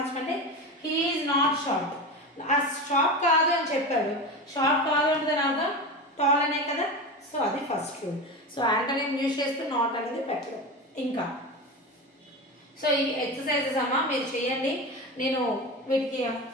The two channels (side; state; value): both; normal; correlation 0.24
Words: హీ ఈజ్ నాట్ షార్ట్. ఆ షార్ట్ కాదు అని చెప్పాడు, షార్ట్ కాదు అంటే దాని అర్థం టాల్ అనే కదా. సో అది first rule. So antonym use చేస్తూ నాట్ అనేది పెట్టడం. ఇంకా సో ఈ ఎక్సర్సైజెస్ అమ్మా మీరు చేయండి. నేను వీటికి